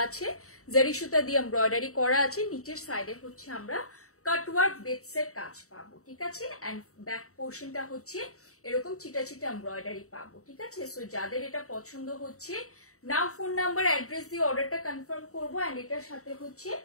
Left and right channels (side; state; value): right; late; 0.64 ms